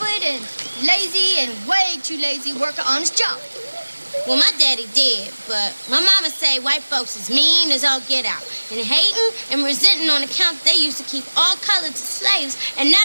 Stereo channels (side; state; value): both; inverted; correlation -1.00